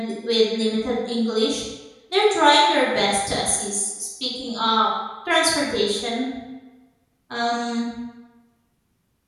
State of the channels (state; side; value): identical; both; correlation 1.00